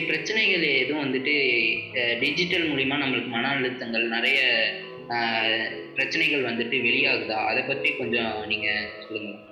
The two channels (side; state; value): both; identical; correlation 1.00